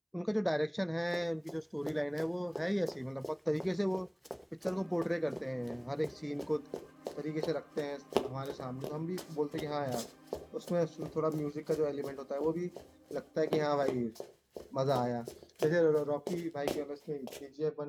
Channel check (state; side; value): identical; both; correlation 1.00